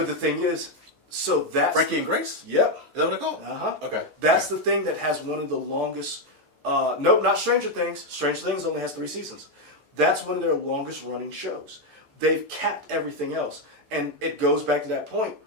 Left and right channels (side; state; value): left; late; 15 ms